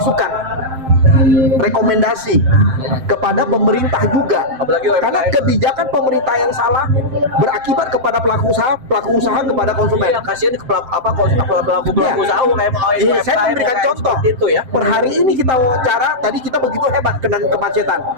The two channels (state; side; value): late; left; 7.7 ms